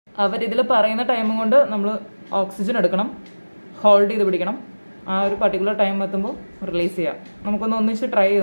അവരിതിൽ പറയുന്ന ടൈം കൊണ്ട് നമ്മൾ ഓക്സിജൻ എടുക്കണം, ഹോൾഡ് ചെയ്ത് പിടിക്കണം. ആ ഒരു പർട്ടിക്കുലർ ടൈം എത്തുമ്പോൾ റിലീസ് ചെയ്യാം. നമുക്കൊന്ന് ഒന്നിച്ച് ട്രൈ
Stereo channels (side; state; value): both; inverted; correlation -1.00